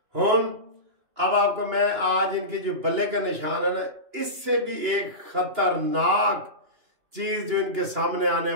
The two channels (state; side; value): late; left; 2.9 ms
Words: हुन अब आपको मैं आज इनकी जो बल्ले का निशान है ना, इससे भी एक खतरनाक चीज जो इनके सामने आने